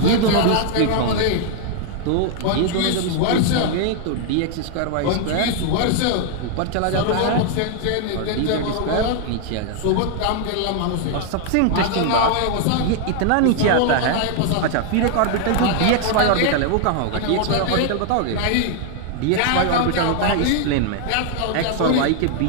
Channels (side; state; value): both; different; correlation 0.00